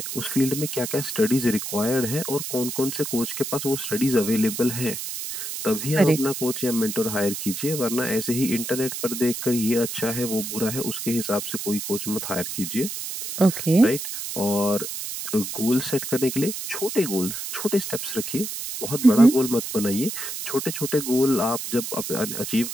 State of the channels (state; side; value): noise; right; hiss, 6 dB below the sound